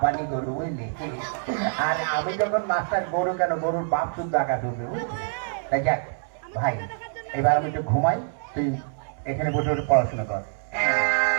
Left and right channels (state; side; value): silent; left; 61 dB below the other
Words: গরু, বুঝলি? আর আমি যখন মাস্টার, গরু কেন, গরুর বাপ শুদ্ধ আকাশে উঠবে, বুঝলি? তাই যাক ভাই, এবার আমি একটু ঘুমাই, তুই এখানে বসে বসে পড়াশোনা কর।